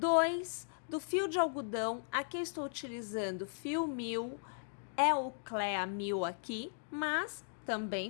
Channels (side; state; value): right; silent; digital silence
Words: do fio de algodão. Aqui eu estou utilizando fio 1000, é o Clea 1000 aqui, mas